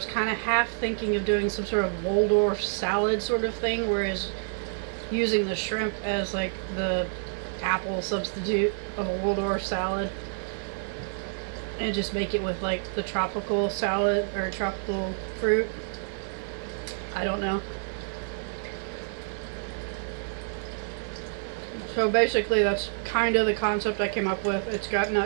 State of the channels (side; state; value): left; silent; 59 dB below the other